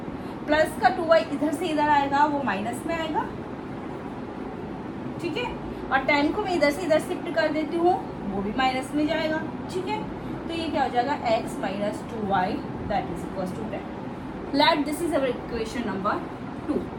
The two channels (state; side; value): identical; both; correlation 1.00